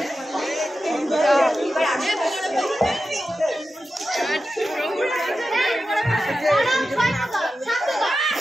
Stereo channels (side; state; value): both; normal; correlation 0.92